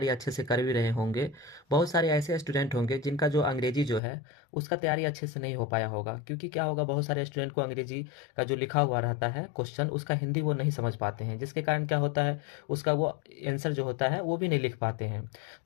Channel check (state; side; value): drops out; right; at 4.0 s